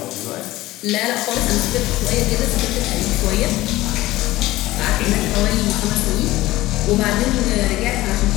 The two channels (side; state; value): right; quieter; 17.4 dB